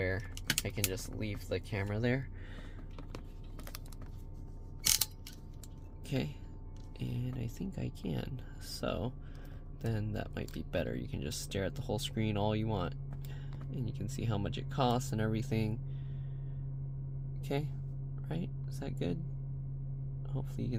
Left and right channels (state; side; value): identical; both; correlation 1.00